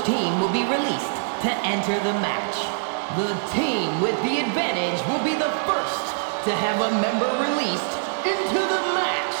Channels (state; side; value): silent; left; digital silence